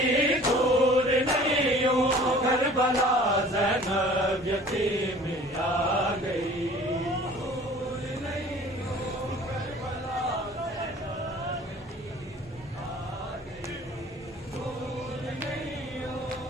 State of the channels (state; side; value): normal; both; correlation 0.48